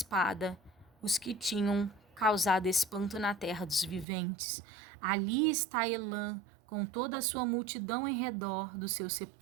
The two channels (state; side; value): drops out; left; at 4.0 s